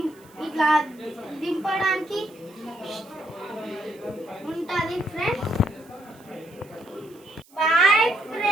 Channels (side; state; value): right; noise; hiss, 28 dB below the sound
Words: ఇట్లా దింపడానికి ఉంటుంది ఫ్రెండ్స్. Bye